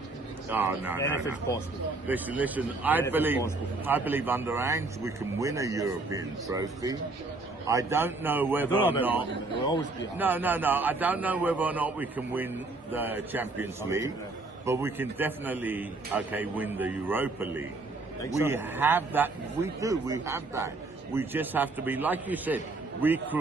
Oh, no. anything's possible. Listen, I Anything's possible. believe under Ange we can win a European trophy. I don't know whether or I don't know not. about it. We'll always be No. I don't know whether or not we can win the Champions League, but we can definitely, win the Europa League. Think We so? have that. We do. We have that. We just have to be, like you said, we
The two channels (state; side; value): quieter; left; 3.3 dB